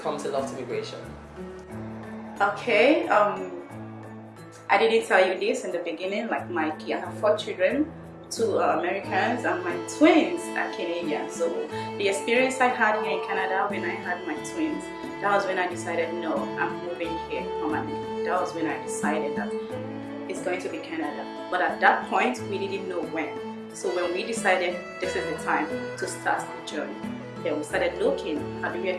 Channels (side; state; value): both; identical; correlation 1.00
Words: to Loft Immigration? Okay, I didn't tell you this in the beginning. Like I have 4 children, 2 are Americans, and my twins are Canadian. So the experience I had here in Canada when I had my twins, that was when I decided, no, I'm moving here permanently. That was when I decided that it's going to be Canada. But at that point, we didn't know when. So when we decided this is the time to start the journey, then we started looking, how do we